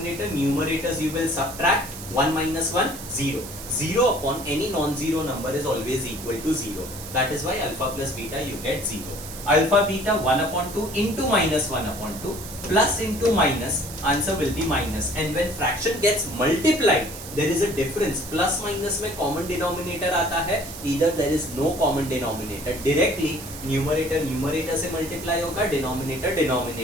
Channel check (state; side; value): noise; right; hiss, 12 dB below the sound